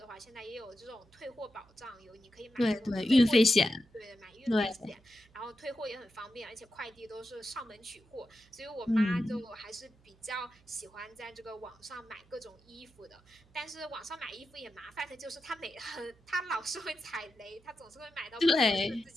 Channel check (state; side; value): noise; right; hum, 29 dB below the sound